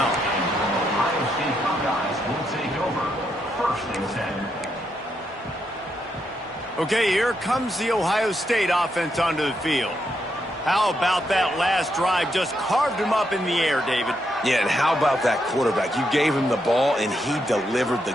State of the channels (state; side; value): normal; both; correlation 0.80